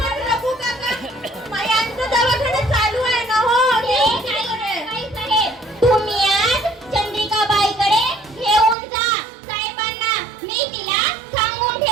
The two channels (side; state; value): left; drops out; at 8.8 s